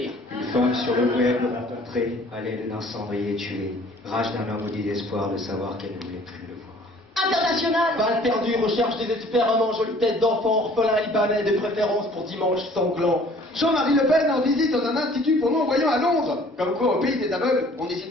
Une femme sur le web rencontrée à l'aide d'un cendrier tué. Rage d'un homme au désespoir de savoir qu'elle ne voulait plus le voir. International. Balle perdue, recherche désespérément, jolie tête d'enfant, orphelin libanais, de préférence pour dimanche sanglant. Jean-Marie Le Pen en visite dans un institut pour non-voyants à Londres. Comme quoi, au pays des aveugles, on n'hésite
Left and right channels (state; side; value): normal; both; correlation 0.54